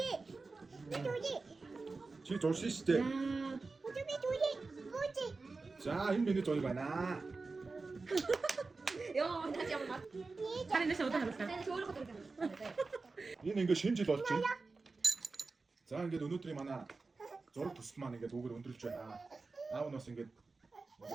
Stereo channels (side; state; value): left; quieter; 3.9 dB